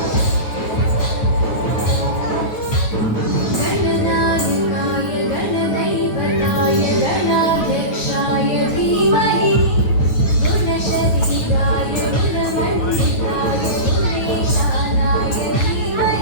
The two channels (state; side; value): late; right; 9.3 ms